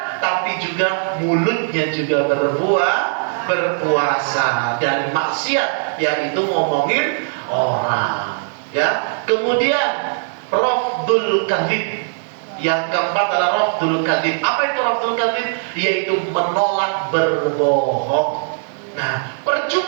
tapi juga mulutnya juga berpuasa dari maksiat, yaitu ngomongin orang, ya. Kemudian rafdul kadzib. Yang keempat adalah rafdul kadzib. Apa itu rafdul kadzib? Yaitu menolak berbohong. Nah,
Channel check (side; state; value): left; silent; digital silence